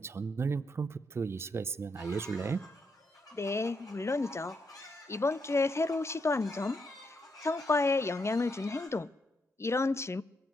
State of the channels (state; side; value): normal; both; correlation 0.78